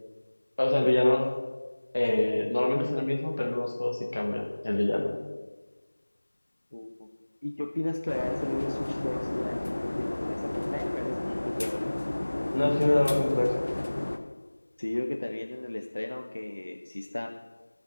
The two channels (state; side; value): inverted; both; correlation -1.00